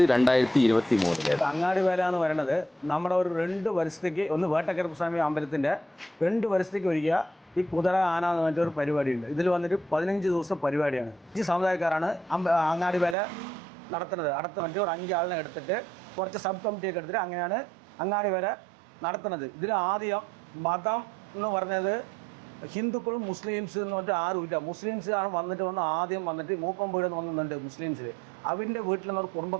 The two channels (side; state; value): left; drops out; at 13.2 s